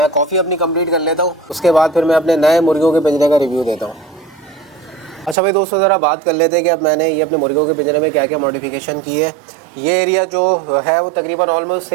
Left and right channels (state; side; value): drops out; left; at 5.4 s